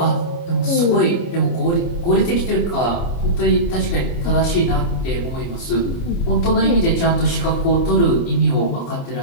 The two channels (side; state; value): right; late; 29 ms